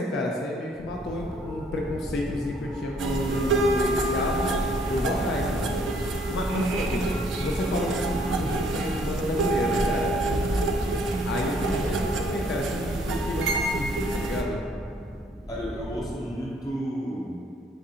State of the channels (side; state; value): both; normal; correlation 0.63